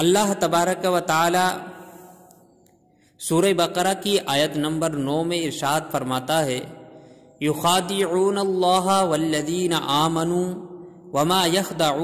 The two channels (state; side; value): identical; both; correlation 1.00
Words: تبارک و تعالی سورہ بقرہ کی آیت نمبر 9 میں ارشاد فرماتا ہے، یخادعون اللہ والذین آمنوا وما